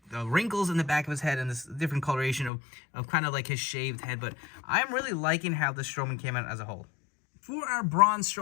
the wrinkles in the back of his head and this different coloration of kind of like his shaved head. But I'm really liking how the Strowman came out as a whole. For our Braun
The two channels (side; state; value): right; drops out; at 2.5 s